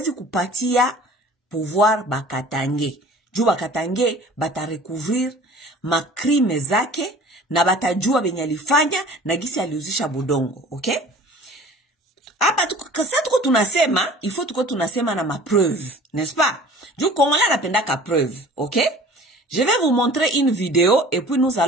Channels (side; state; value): both; normal; correlation 0.45